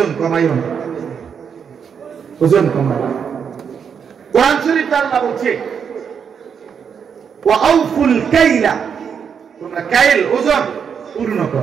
কমাইও না, ওজন কমাও। কোরআন শরীফ আল্লাহ বলছে ওয়া আউফুল কাইলা, তোমরা কাইল ওজন পূর্ণ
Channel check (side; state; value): left; quieter; 7.0 dB